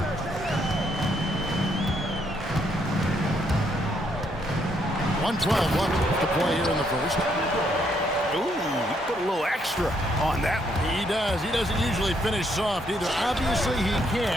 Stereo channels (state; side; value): normal; both; correlation 0.73